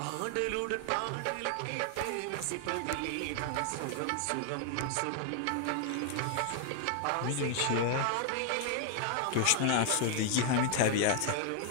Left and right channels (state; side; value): different; both; correlation 0.00